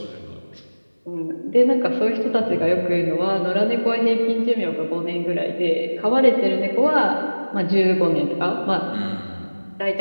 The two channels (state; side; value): inverted; both; correlation -1.00